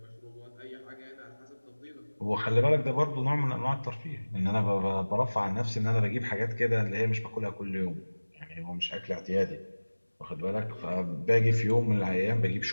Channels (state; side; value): inverted; both; correlation -1.00